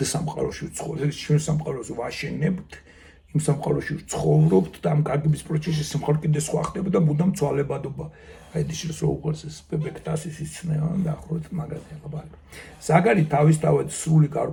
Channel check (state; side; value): identical; both; correlation 1.00